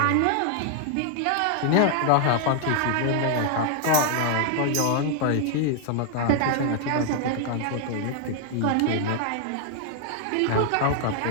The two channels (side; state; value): both; different; correlation 0.00